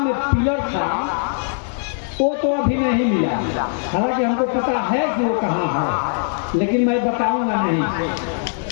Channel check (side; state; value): right; silent; digital silence